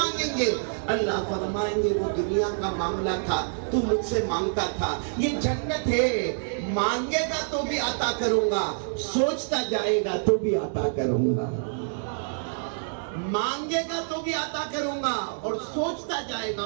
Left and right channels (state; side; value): silent; left; digital silence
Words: گے۔ اللہ فرمائیں گے وہ دنیا کا معاملہ تھا، تو مجھ سے مانگتا تھا، یہ جنت ہے، مانگے گا تو بھی عطا کروں گا، سوچتا جائے گا تو بھی عطا کروں گا، مانگے گا تو بھی عطا کروں گا اور سوچتا جائے گا،